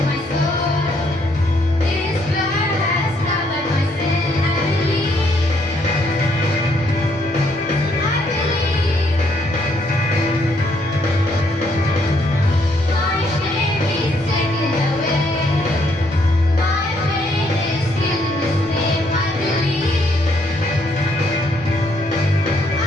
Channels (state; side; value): normal; both; correlation 0.71